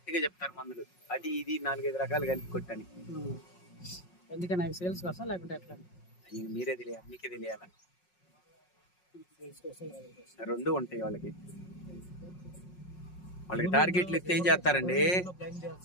చెప్తారు మందులు, అది ఇది 4-5 రకాలు కలిపి కొట్టని. ఎందుకని అవి సేల్స్ కోసం లేకుంటే ఎట్లా? మీరే తెలియాలి, మీకే తెలియాల. రెండు ఉంటాయి వాళ్ళకి. వాళ్ళకి టార్గెట్లు ఇస్తే ఏం చేస్తారండి?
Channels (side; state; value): right; late; 5.5 ms